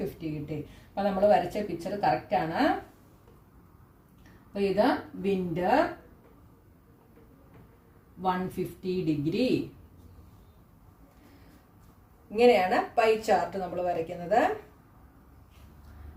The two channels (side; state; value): both; identical; correlation 1.00